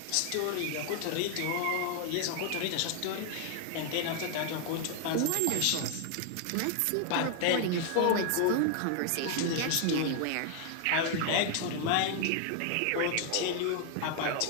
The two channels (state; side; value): different; both; correlation 0.00